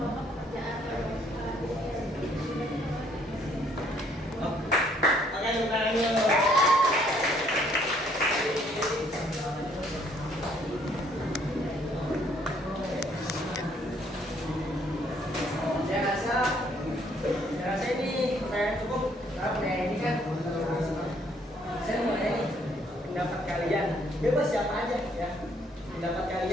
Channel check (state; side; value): normal; both; correlation 0.65